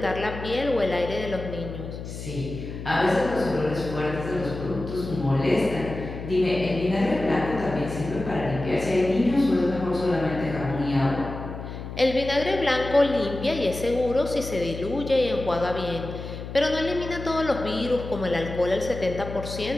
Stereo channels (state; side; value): noise; left; hum, 9 dB below the sound